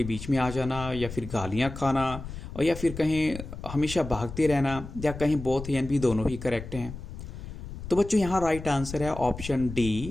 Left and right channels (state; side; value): noise; left; rumble, 10 dB below the sound